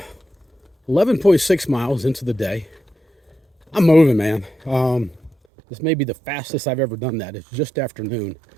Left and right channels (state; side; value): drops out; left; at 5.4 s